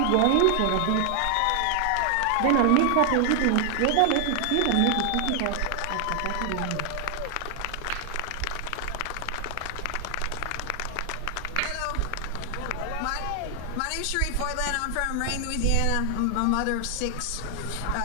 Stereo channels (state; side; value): different; both; correlation 0.00